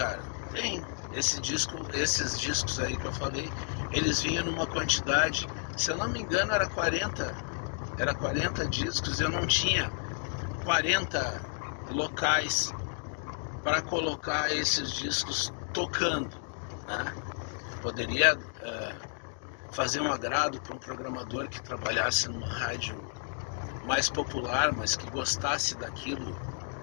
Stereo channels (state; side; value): silent; right; 57 dB below the other